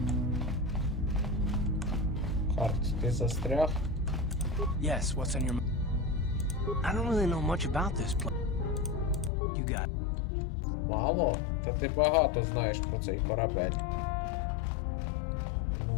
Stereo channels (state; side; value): drops out; right; at 9.3 s